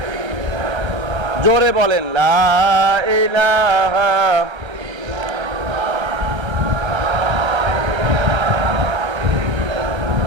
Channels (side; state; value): left; late; 1.3 ms